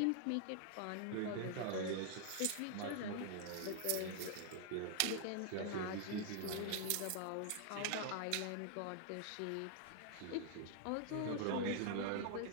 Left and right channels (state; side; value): different; both; correlation 0.00